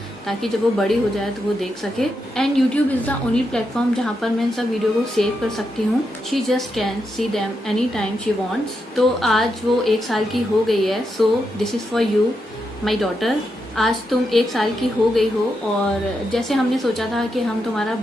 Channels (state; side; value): normal; both; correlation 0.84